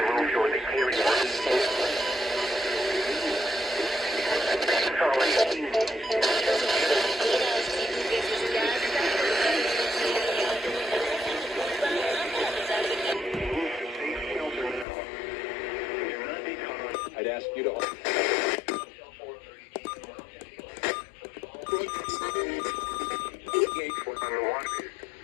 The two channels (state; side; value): drops out; right; at 14.9 s